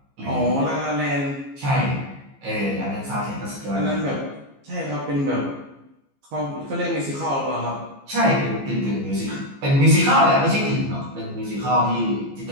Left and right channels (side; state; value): left; late; 15 ms